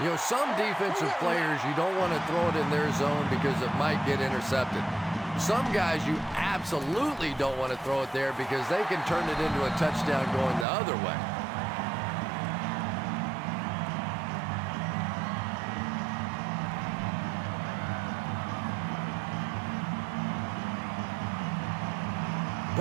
You know, some defensive players, you don't want to throw it in their zone because it might get intercepted. Some guys, you absolutely don't want to throw it there because they can turn it into a touchdown going the other way.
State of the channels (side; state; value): left; drops out; at 10.7 s